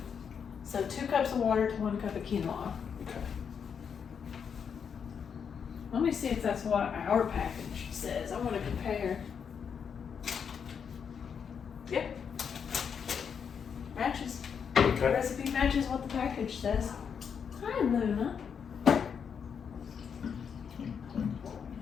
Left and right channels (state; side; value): quieter; right; 7.0 dB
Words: So 2 cups of water to 1 cup of quinoa. Okay. Let me see if that's what our package says. I want to compare. Yep. Matches. The Okay. recipe matches what the package says. Hi, Luna.